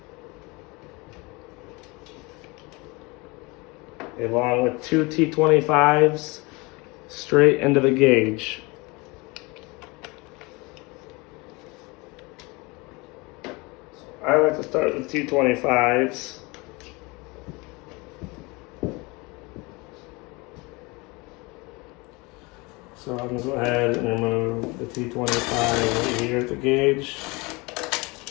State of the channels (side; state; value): right; quieter; 25.8 dB